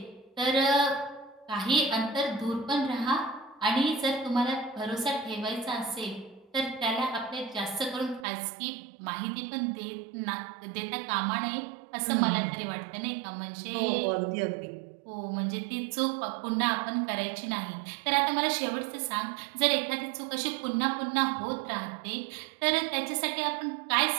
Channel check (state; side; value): drops out; left; at 8.2 s